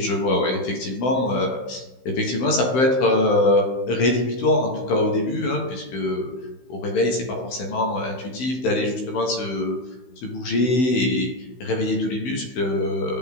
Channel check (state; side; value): late; right; 16 ms